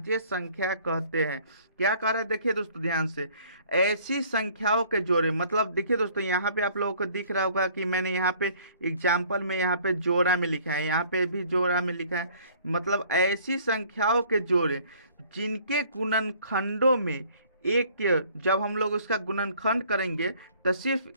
संख्या कहते हैं। क्या कह रहे हैं, देखिए दोस्तों ध्यान से, ऐसी संख्याओं के जोड़े, मतलब देखिए दोस्तों यहाँ पे आप लोगों को दिख रहा होगा कि मैंने यहाँ पे एग्जाम्पल में यहाँ पे जोड़ा में लिखा है, यहाँ पे भी जोड़ा में लिखा है। मतलब ऐसी संख्याओं के जोड़े जिनके गुणनखंडों में एक के, जब हम लोग उसका गुणनखंड करेंगे तो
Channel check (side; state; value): both; inverted; correlation -0.56